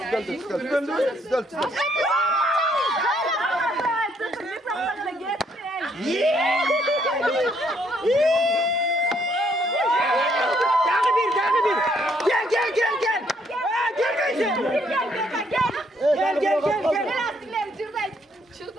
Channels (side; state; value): both; normal; correlation 0.69